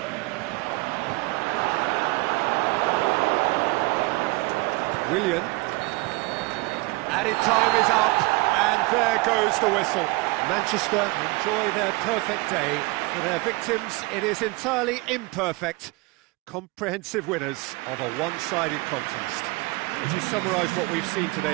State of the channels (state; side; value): quieter; left; 24.5 dB